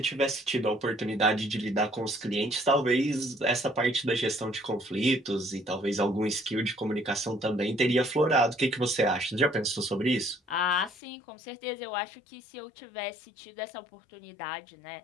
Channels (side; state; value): right; drops out; at 11.0 s